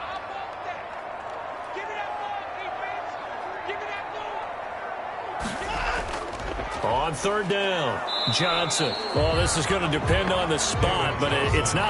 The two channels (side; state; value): both; identical; correlation 1.00